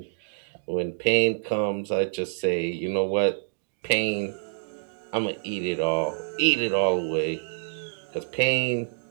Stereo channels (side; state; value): left; silent; 60 dB below the other